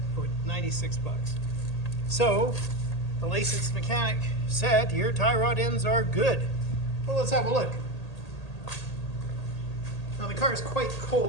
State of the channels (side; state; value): right; late; 1.8 ms